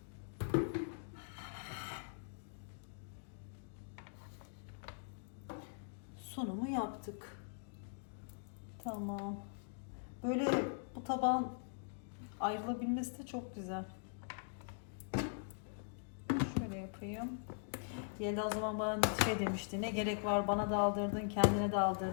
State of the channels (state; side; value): silent; right; digital silence